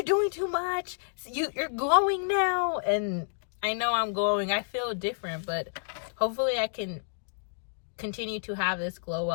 doing too much, you're glowing now. And I know I'm glowing, I feel different, but hopefully I can continue to have this glow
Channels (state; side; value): silent; right; digital silence